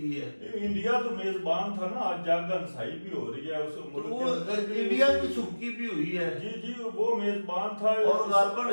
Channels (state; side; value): inverted; both; correlation -1.00